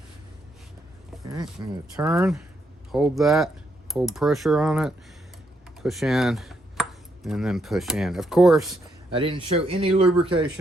Okay, I'm going to turn. Hold that. Hold pressure on it. Push in. And then push in. Of course, I didn't show any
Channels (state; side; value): normal; both; correlation 0.77